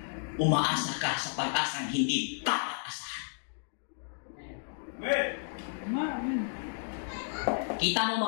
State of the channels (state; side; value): silent; right; digital silence